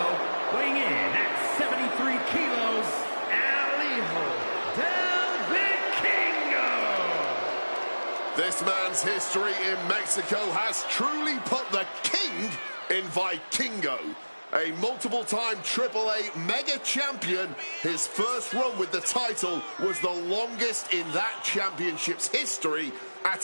weighing in at 73 kilos, El Hijo del Vikingo. This man's history in Mexico has truly put the king in Vikingo. A multiple-time AAA mega champion, his first run with the title was the longest in that championship's history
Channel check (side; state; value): both; inverted; correlation -1.00